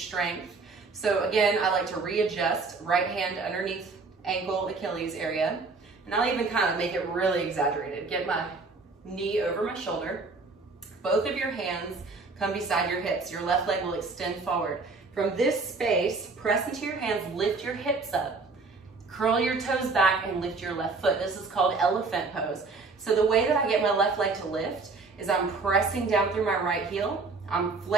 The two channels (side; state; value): left; quieter; 4.0 dB